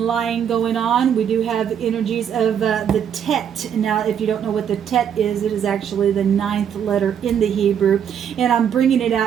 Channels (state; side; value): quieter; left; 8.6 dB